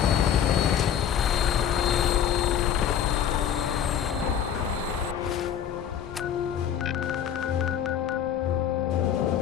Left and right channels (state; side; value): quieter; right; 9.0 dB